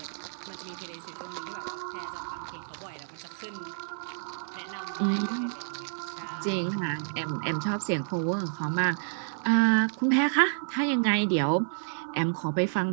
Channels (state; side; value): silent; left; 58 dB below the other